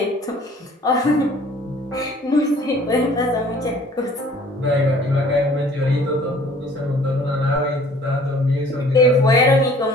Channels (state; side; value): normal; both; correlation 0.53